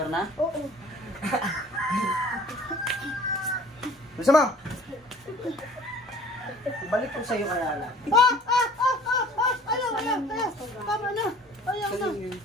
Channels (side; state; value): both; normal; correlation 0.50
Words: na? Oo. Gusto mo? Balik ko sa'yo kaya lang. Ayaw. Tama na. Ayaw na.